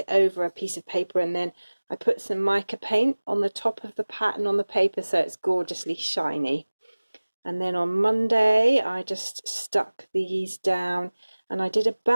over a piece of paper, and then I put some mica paint on the top of the pattern on the paper so it's gorgeously shiny. And then on Monday I just stuck these down, and I did a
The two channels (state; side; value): inverted; both; correlation -1.00